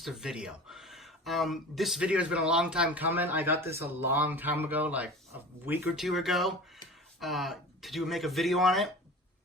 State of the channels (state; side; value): normal; both; correlation 0.37